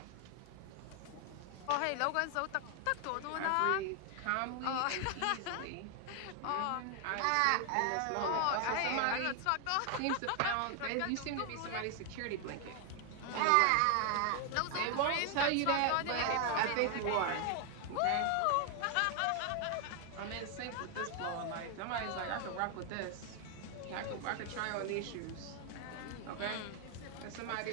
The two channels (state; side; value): different; both; correlation 0.00